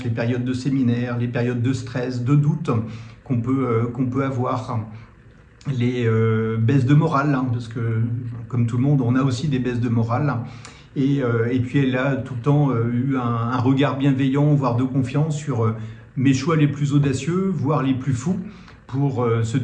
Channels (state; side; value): identical; both; correlation 1.00